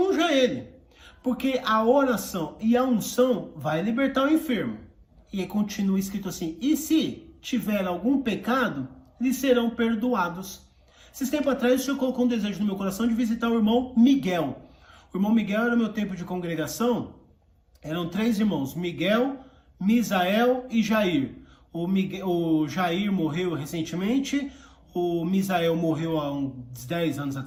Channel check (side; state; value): both; identical; correlation 1.00